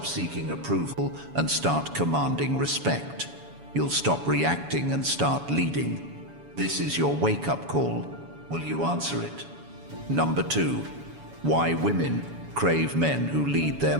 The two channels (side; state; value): left; late; 7.1 ms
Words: seeking approval and start commanding respect. You'll stop reacting and start leading. This is your wake-up call. Will you answer it? Number 2, why women crave men who lead their